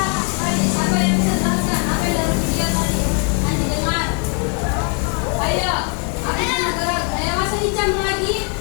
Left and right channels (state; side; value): quieter; right; 39.0 dB